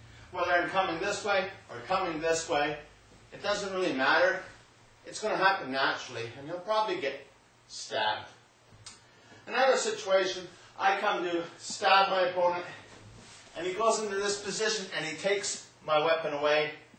Whether I'm coming this way or coming this way, it doesn't really matter. It's going to happen naturally, and you'll probably get stabbed. Another situation, I come to stab my opponent, and he goes into this position and he takes my weapon away,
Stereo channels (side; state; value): both; identical; correlation 1.00